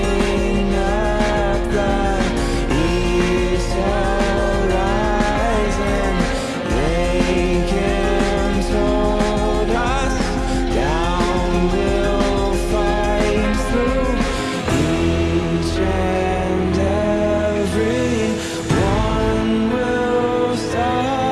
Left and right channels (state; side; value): identical; both; correlation 1.00